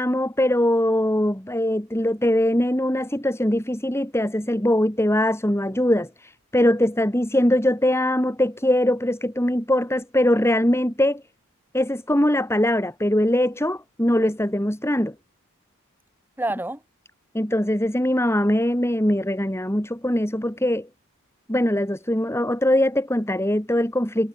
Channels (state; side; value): normal; both; correlation 0.87